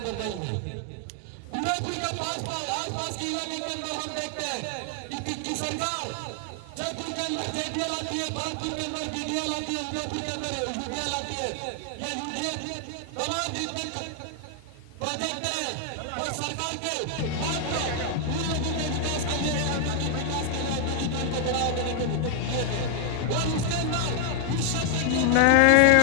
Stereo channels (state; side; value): different; both; correlation 0.00